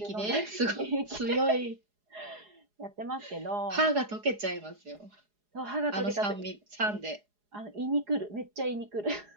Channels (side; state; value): left; late; 4.8 ms